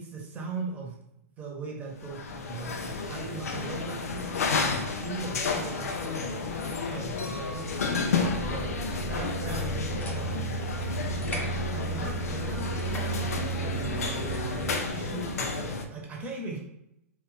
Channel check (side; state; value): both; normal; correlation -0.12